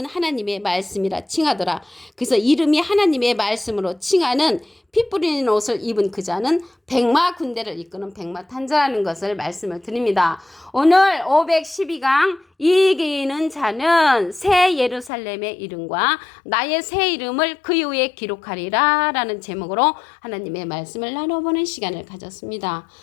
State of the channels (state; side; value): drops out; right; at 15.1 s